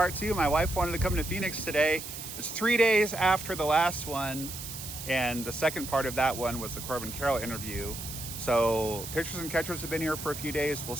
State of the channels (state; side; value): noise; right; hiss, 9 dB below the sound